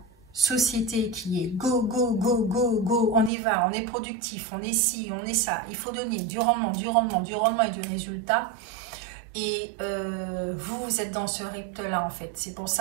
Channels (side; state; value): left; drops out; at 3.3 s